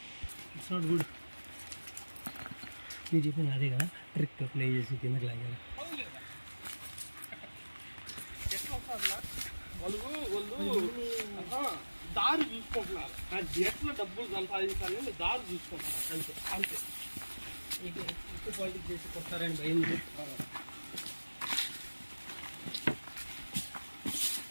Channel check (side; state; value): both; inverted; correlation -1.00